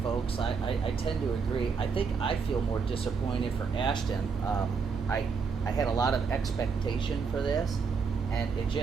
folks, I tend to agree. I think I feel more disappointed for Ashton. I had a lot of expectation for this, and it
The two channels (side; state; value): left; quieter; 5.4 dB